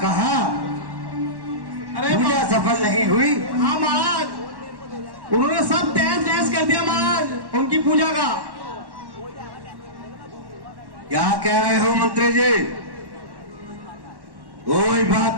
कहा? अरे पूजा सफल नहीं हुई? हाँ महाराज, उन्होंने सब तहस नहस कर दिया महाराज उनकी पूजा का। क्या कह रहे हो मंत्री जी? कोई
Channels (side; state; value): left; late; 1.1 ms